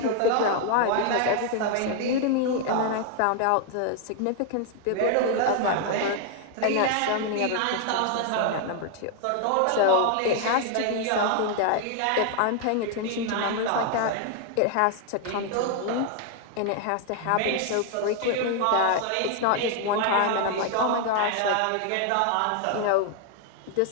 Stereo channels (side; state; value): both; different; correlation 0.00